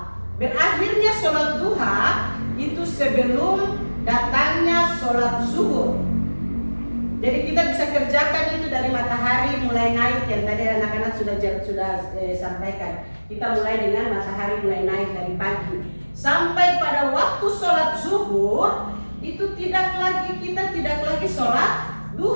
Berakhirnya sholat duha itu sebelum datangnya sholat zuhur. Jadi kita bisa kerjakan itu dari matahari mulai naik, yang tadi anak-anak sudah sampaikan. Kita mulai dengan matahari mulai naik dari pagi sampai pada waktu sholat zuhur itu kita tidak lagi sholat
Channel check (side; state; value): both; inverted; correlation -1.00